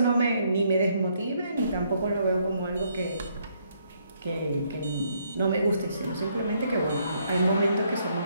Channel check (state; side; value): inverted; both; correlation -0.71